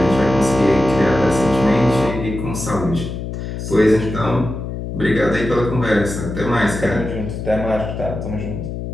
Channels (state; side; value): noise; left; hum, 6 dB below the sound